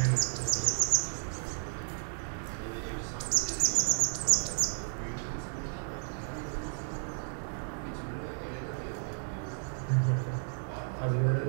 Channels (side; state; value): left; silent; 56 dB below the other